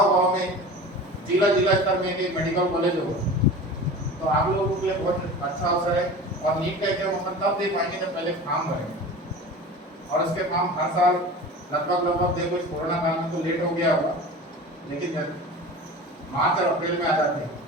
में जिला स्तर में एक मेडिकल कॉलेज होगा, तो आप लोगों के लिए बहुत अच्छा अवसर है। और नीट का एग्जाम अपन तब दे पाएंगे जब पहले फॉर्म भरेंगे, और उसके फॉर्म हर साल लगभग देखो, इस कोरोना काल में तो लेट हो गया होगा, लेकिन मार्च और अप्रैल में आ जाते हैं,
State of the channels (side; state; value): both; normal; correlation 0.35